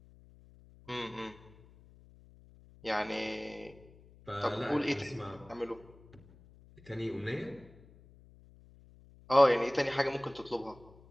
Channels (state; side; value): noise; left; hum, 24 dB below the sound